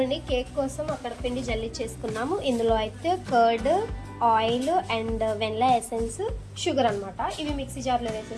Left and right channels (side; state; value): both; identical; correlation 1.00